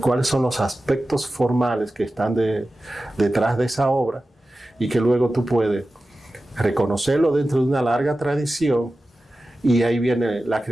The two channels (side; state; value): both; normal; correlation 0.94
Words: son los aspectos formales que están detrás de esa obra y que luego tú puedes reconocerlo dentro de una larga tradición y ahí viene la